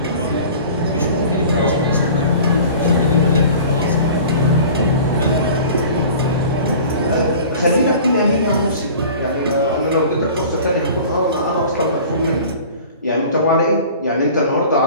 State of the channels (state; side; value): inverted; both; correlation -0.42